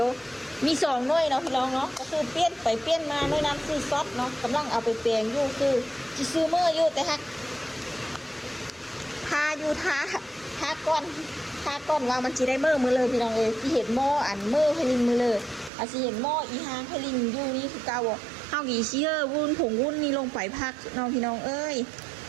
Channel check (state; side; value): drops out; left; at 15.7 s